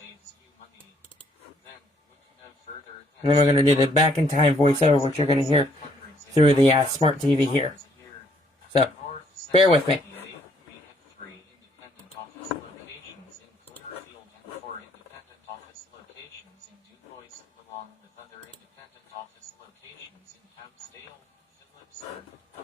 you money, then look no further And then we're going to do the back in time voiceover, which you're going to hear through the smart TV here. So, bear with me. We have 3 independent office locations in Clearfield and 4 independent office locations in DuBois, along with other independent office locations in Houtzdale, Phillipsburg,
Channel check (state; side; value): normal; both; correlation 0.67